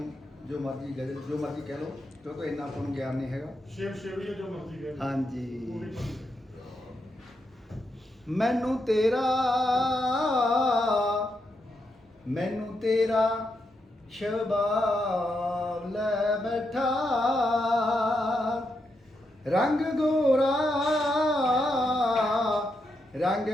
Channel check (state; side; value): normal; both; correlation 0.83